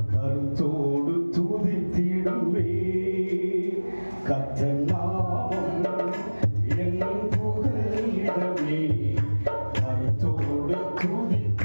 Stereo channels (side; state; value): both; inverted; correlation -1.00